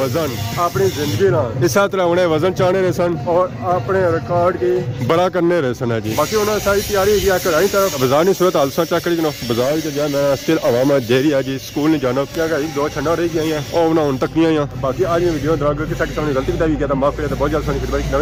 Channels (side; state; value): both; identical; correlation 1.00